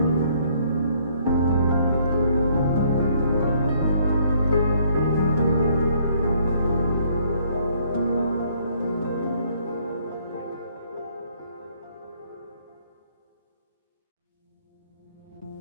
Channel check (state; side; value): inverted; both; correlation -0.64